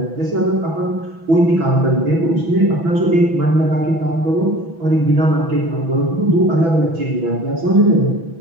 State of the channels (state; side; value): late; left; 6.1 ms